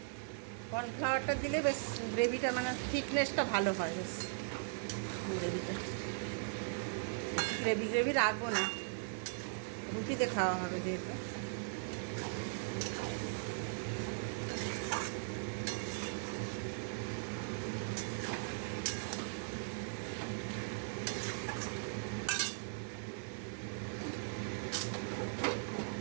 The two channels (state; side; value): silent; left; 52 dB below the other